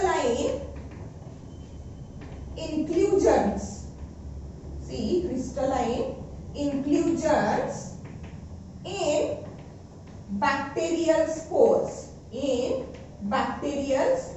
inclusions. See, crystalline inclusions in bacterial spores. In bacterial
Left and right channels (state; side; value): identical; both; correlation 1.00